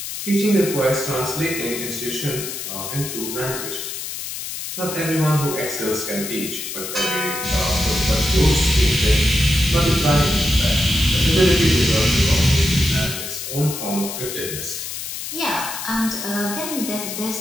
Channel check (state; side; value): noise; left; hiss, 7 dB below the sound